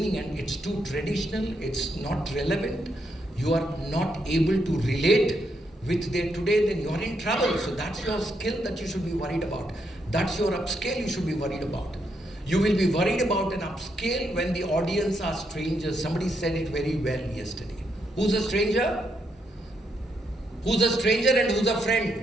and it's too traditional, it's not relevant, you are not able to relate with their today, then you're in trouble. So that's your skill that you should be worried about. That's your upscale you should be worried about. You will be worried about an upscale when the audience are strangers. Somebody said it very well yesterday. Who's a stranger? Who's a stranger and who's a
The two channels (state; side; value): normal; both; correlation 0.79